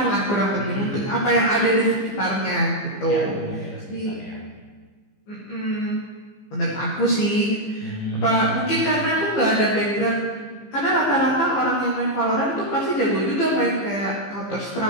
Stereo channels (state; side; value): late; right; 15 ms